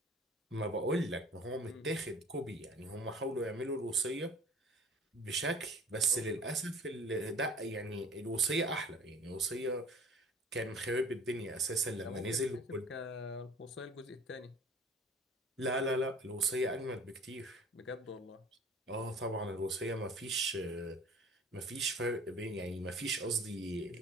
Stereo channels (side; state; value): both; normal; correlation 0.46